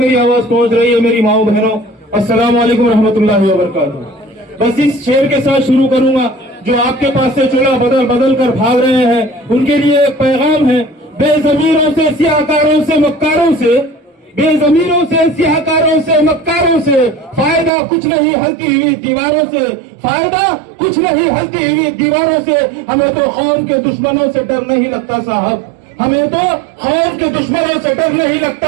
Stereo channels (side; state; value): left; drops out; at 17.7 s